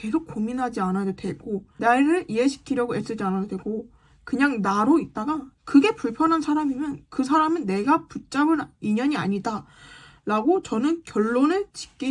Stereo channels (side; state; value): both; identical; correlation 1.00